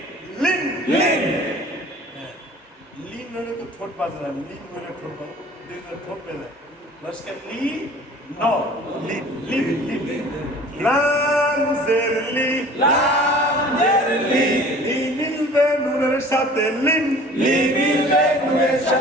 লিন, লিন, লিন হলে তো ঠোঁট বাজে না, লিন হলে ঠোঁট বাজে, দুইটা ঠোঁট বেজে লস্কার লি, ন, লিন, লিন, লিন, লাম জের লি, লাম জের লি, ই মিলবে নুনের সাথে লিন, লি মিলবে নুনের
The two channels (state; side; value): normal; both; correlation 0.47